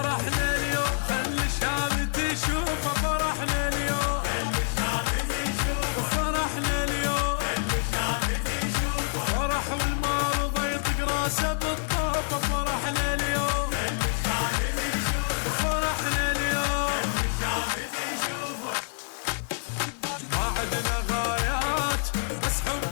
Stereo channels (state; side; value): silent; right; 60 dB below the other